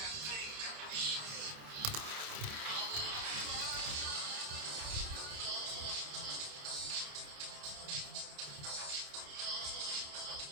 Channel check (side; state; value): left; late; 28 ms